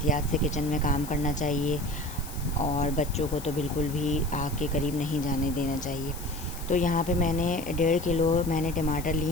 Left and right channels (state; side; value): noise; left; hiss, 14 dB below the sound